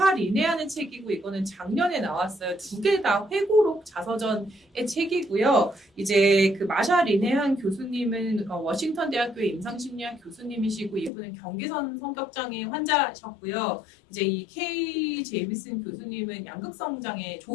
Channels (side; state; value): right; drops out; at 11.1 s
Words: 리네하는 책이고 이거는 작년에 나왔어요. 두 개 다 회고록 자서전의 책이고요. 이제 그 마샤 리네한 교수님은 워싱턴 대학교의 임상심리학 교수님이시고 이분은 경계선 성격장애 환자셨고요. 이제 이 K 제이미슨 교수님은 양극성 장애